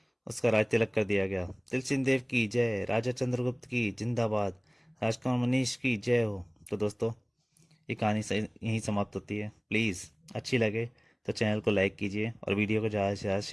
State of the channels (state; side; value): identical; both; correlation 1.00